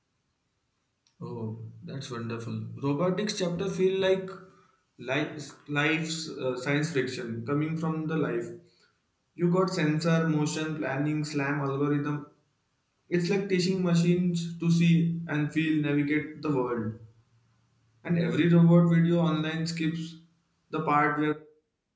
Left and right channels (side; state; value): both; identical; correlation 1.00